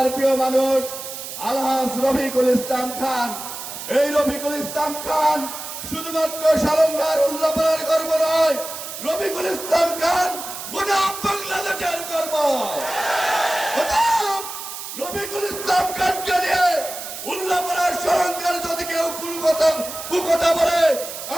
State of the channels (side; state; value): right; noise; hiss, 9 dB below the sound